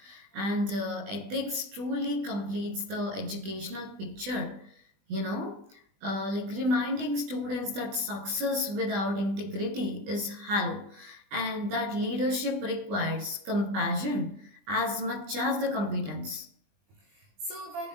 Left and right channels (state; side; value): late; left; 20 ms